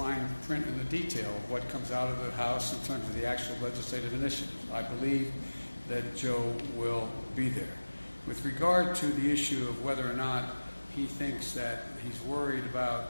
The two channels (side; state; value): both; inverted; correlation -1.00